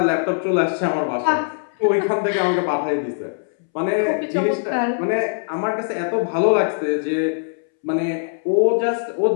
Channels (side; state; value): right; silent; 65 dB below the other